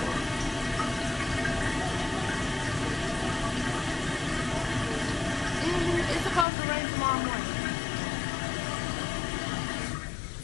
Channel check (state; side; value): drops out; right; at 6.5 s